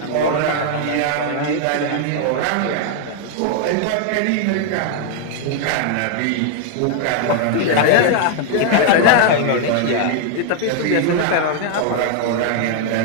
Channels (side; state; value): both; different; correlation 0.00